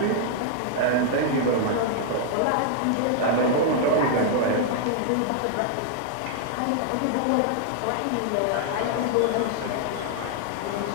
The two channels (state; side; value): different; both; correlation -0.01